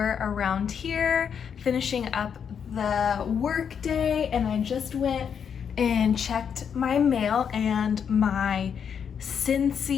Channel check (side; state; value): right; quieter; 7.4 dB